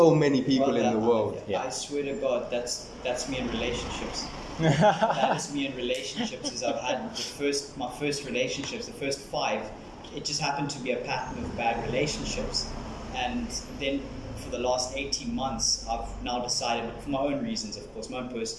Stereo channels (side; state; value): both; identical; correlation 1.00